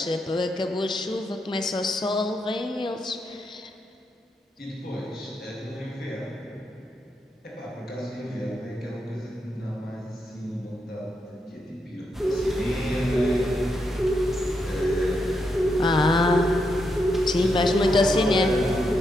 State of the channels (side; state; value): both; normal; correlation 0.82